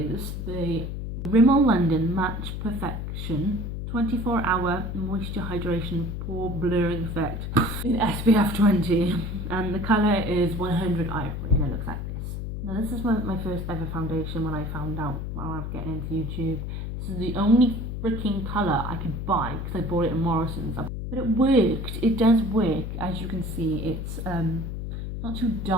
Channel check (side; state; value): left; noise; hum, 5 dB below the sound